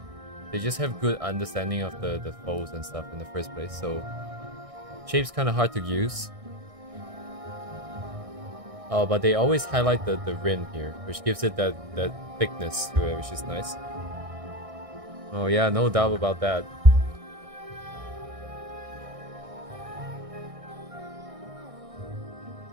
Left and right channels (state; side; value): late; left; 1.6 ms